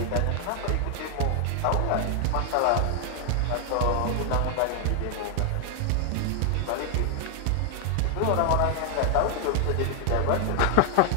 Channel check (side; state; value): both; different; correlation 0.00